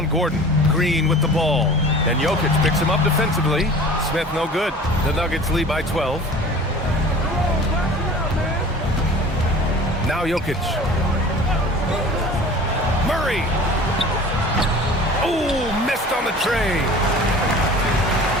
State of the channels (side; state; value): both; normal; correlation 0.42